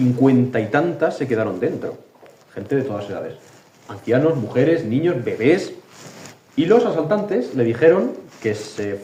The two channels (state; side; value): identical; both; correlation 1.00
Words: y tantas se quedaron dentro, gente de todas edades, ancianos, mujeres, niños, bebés, y los asaltantes le dijeron que se